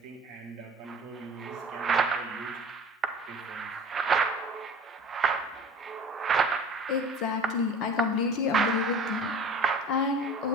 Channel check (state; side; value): normal; both; correlation 0.41